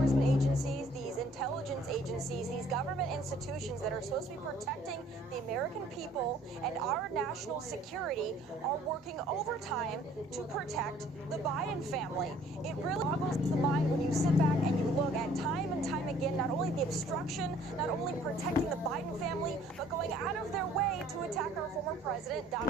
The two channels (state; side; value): normal; both; correlation 0.57